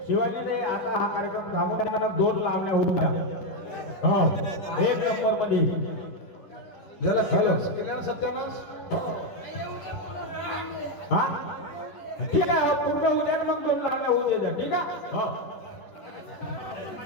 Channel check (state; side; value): late; right; 11 ms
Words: शिवाजीने आता हा कार्यक्रम थांबवताना 2 लावण्या होऊन द्या हा 1 नंबर मध्ये ज्याला केलं केल्यानं सत्यानाश. हा ठीक आहे पूर्ण होऊ द्या मग 2 लावण्या होऊन द्या ठीक आहे हो